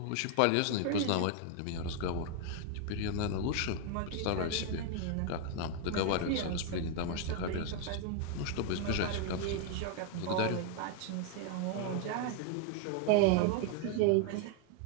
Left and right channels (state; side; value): different; both; correlation 0.00